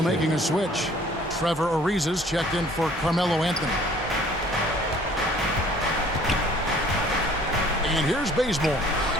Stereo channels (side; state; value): both; normal; correlation 0.55